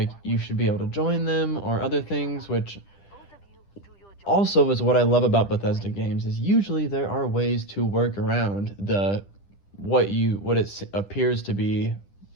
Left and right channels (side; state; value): right; late; 10 ms